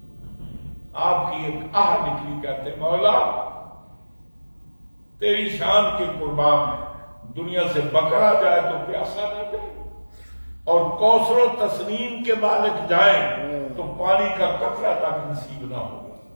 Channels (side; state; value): both; inverted; correlation -1.00